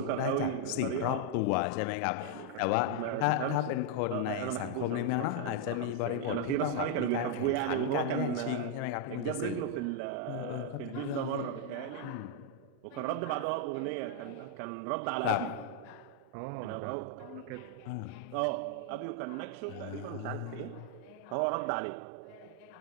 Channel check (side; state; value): both; different; correlation 0.00